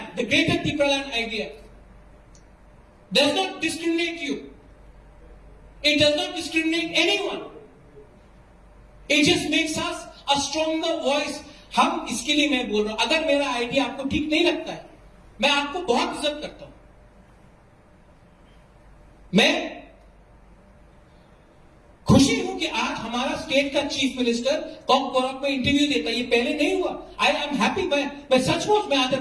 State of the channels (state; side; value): identical; both; correlation 1.00